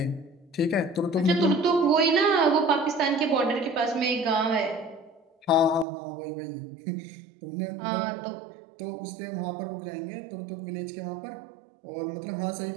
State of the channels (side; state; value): left; drops out; at 5.9 s